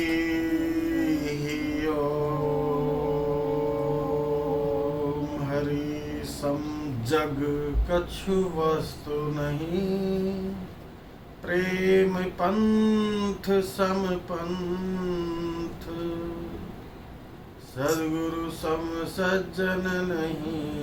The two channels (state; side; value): identical; both; correlation 1.00